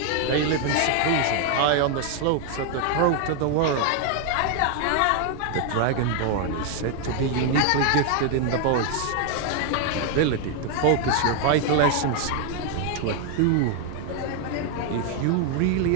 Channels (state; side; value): different; both; correlation 0.01